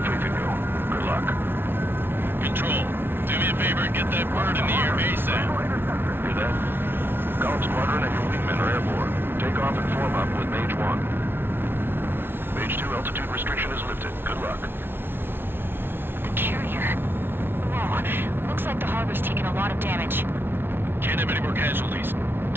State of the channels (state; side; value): late; left; 0.11 ms